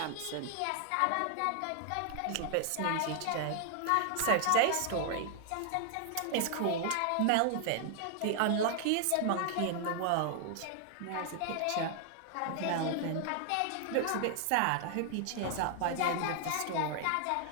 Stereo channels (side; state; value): both; different; correlation 0.00